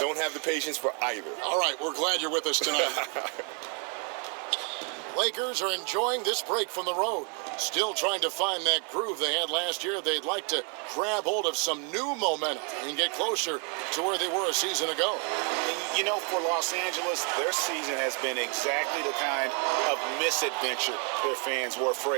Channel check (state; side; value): quieter; left; 36.5 dB